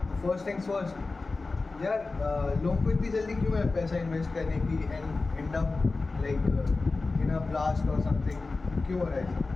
first things first. यार लोगों को इतनी जल्दी क्यों है पैसा इन्वेस्ट करने की and and up like in a blast और समथिंग क्यों हो रहा है ऐसा?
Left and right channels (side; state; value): right; quieter; 3.7 dB